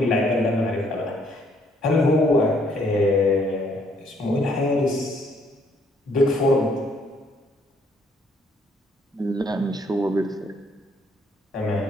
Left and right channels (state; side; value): normal; both; correlation 0.67